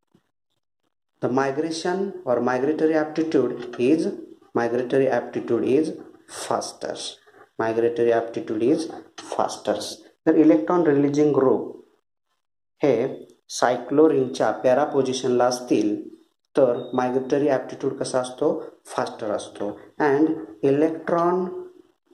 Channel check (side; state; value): both; identical; correlation 1.00